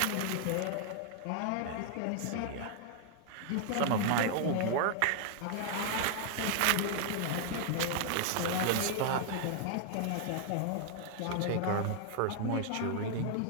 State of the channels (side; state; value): both; different; correlation 0.00